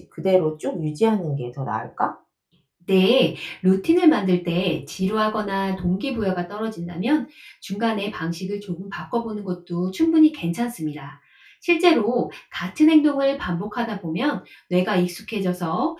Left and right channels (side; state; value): both; identical; correlation 1.00